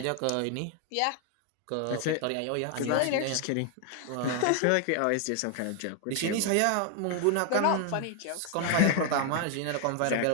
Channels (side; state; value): both; different; correlation 0.00